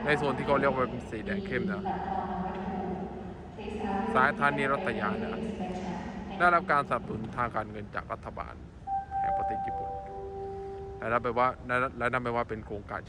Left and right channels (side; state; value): both; identical; correlation 1.00